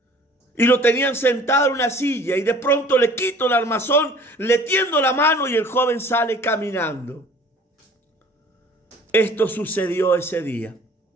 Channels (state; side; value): normal; both; correlation 0.50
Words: y lo tenían sentado en una silla, y de pronto le quito el armazón, le tiendo la mano y el joven sale caminando. Esto sucedió ese día.